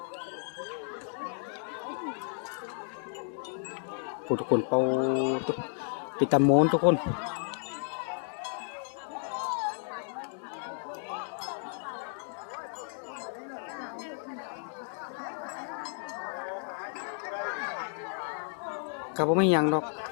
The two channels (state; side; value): silent; right; 56 dB below the other